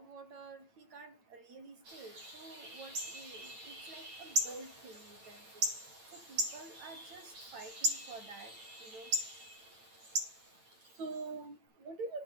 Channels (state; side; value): late; left; 8.9 ms